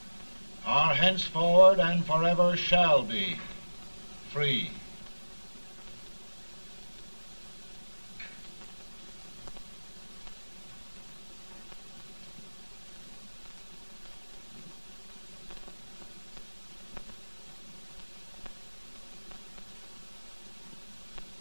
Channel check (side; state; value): both; inverted; correlation -1.00